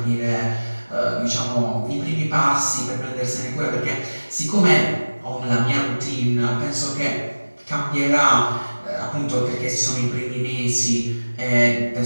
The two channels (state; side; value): inverted; both; correlation -1.00